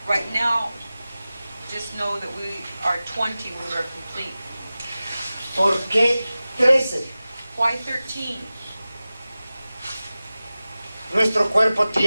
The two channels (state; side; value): inverted; both; correlation -0.97